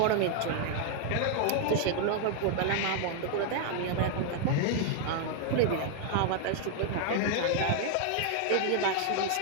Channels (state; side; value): different; both; correlation 0.00